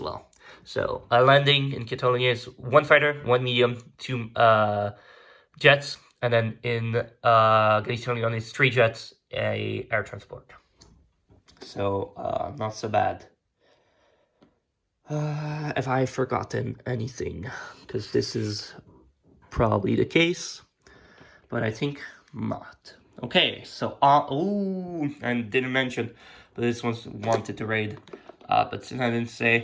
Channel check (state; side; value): identical; both; correlation 1.00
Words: well. So, landing in Catalonia is 1 fighter, 1 medium, 2 jets, and then in Galicia-Leon is 3 jets, a air transport. So, not so bad. Have I forgotten anything? Because this is probably the case, but I think not. Okay, so, and didn't mention, but this one wanted to raid, but since I didn't